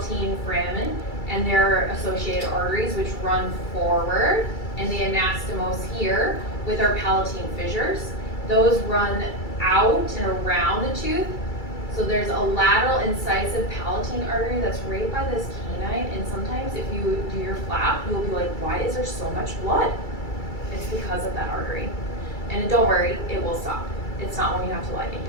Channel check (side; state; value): right; late; 2.3 ms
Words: foramen and their associated arteries, which run forward, and the anastomose here with our palatine fissures. Those run out and around the tooth. So there's a lateral incisive palatine artery that's right by this canine, and sometimes if you do your flap, you'll be like, why is there so much blood? It's because of that artery. And don't worry, it will stop. It's not when you have to